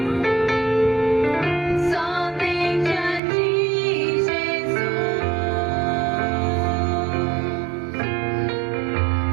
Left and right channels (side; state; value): left; drops out; at 3.2 s